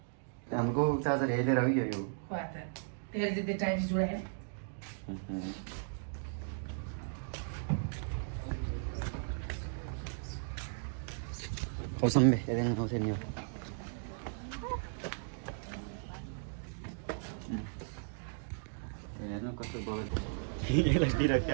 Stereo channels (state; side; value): silent; left; digital silence